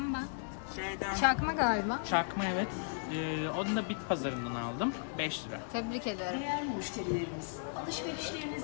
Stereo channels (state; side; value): silent; right; digital silence